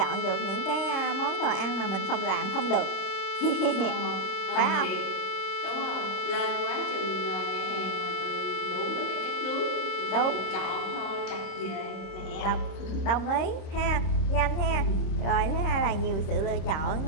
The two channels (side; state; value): right; late; 26 ms